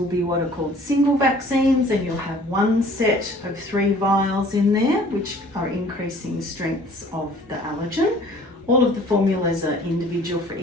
be what are called single vaccines, and you'll have one set of 3 vials in there, which are increasing strengths of the allergen. All of the formulas are individual for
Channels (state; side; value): normal; both; correlation 0.52